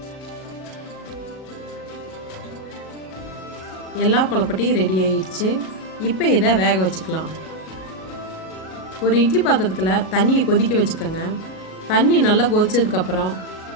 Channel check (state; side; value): late; right; 37 ms